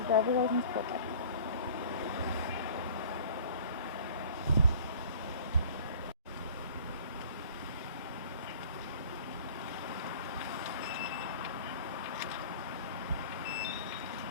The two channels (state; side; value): inverted; both; correlation -0.47